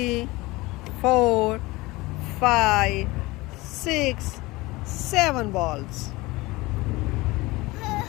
four, five, 6, 7 balls.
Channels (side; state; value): right; quieter; 21.4 dB